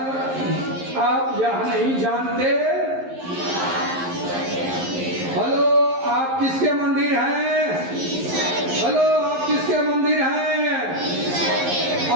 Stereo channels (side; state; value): left; late; 11 ms